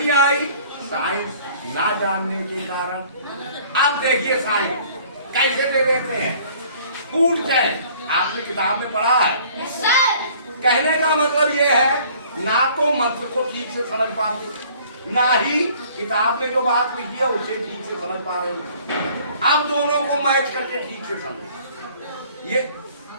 आई? साइंस ना जानने के कारण। अब देखिए साइंस कैसे दे देते हैं। फूड चैन आपने किताब में पढ़ा है। कहने का मतलब ये है, ना तो मंत्र को ठीक से समझ पाते, ना ही किताब में जो बात लिखी है उसे ठीक से समझ पा रहे हो। अब दोनों को मैच करके ठीक से समझो।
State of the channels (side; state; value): both; inverted; correlation -0.54